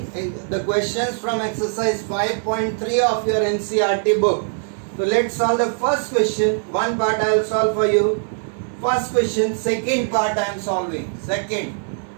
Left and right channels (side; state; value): left; silent; digital silence